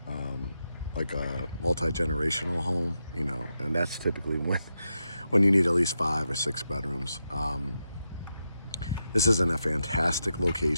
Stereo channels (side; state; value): both; inverted; correlation -0.86